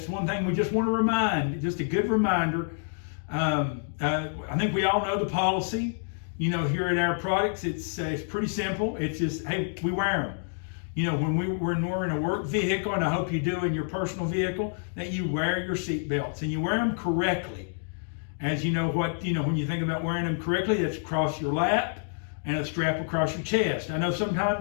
one thing we just want to remind, just a good reminder. I think we all know the policy, here at our products. It's pretty simple. It's just, hey, we wear them. When we're in a work vehicle, and I hope you do in your personal vehicle, that you wear your seat belts and you wear them correctly. As you know when you think about wearing them correctly, it's across your lap and a strap across your chest. I know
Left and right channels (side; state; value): right; silent; digital silence